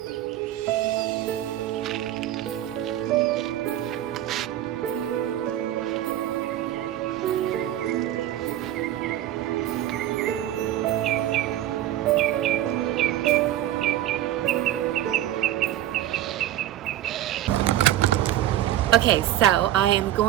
Okay, so I am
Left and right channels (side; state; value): left; quieter; 12.9 dB